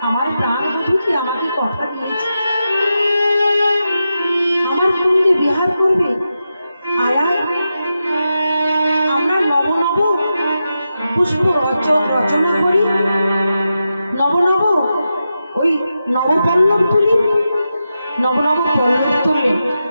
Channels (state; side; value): inverted; both; correlation -0.89